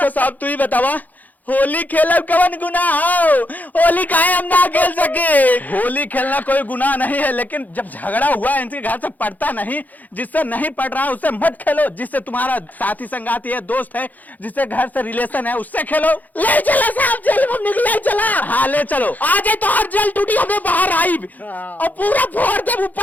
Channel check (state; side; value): late; right; 0.082 ms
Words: साहब तू ही बतावा होली खेलब कवन गुनाह हो? होली काहे हम ना खेल सके? होली खेलना कोई गुनाह नहीं है, लेकिन जब झगड़ा हुआ है इनके घर से पड़ता नहीं, जिससे नहीं पड़ रहा है उससे मत खेलो। जिससे तुम्हारा साथी संगाती है, दोस्त है, जिससे घर से रिलेशन है, उससे खेलो। ले चला साहब, जेल में निकले चला। हाँ ले चलो। आज तो हर जेल टूटी हमें बाहर आई और पूरा फोड़ दे,